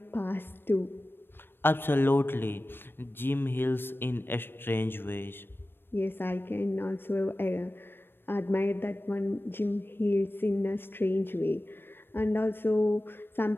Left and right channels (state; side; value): late; right; 0.10 ms